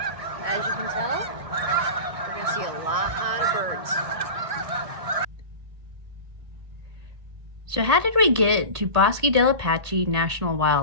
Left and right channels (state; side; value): late; left; 1.8 ms